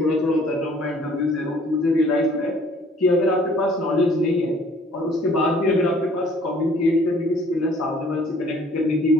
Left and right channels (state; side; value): normal; both; correlation 0.57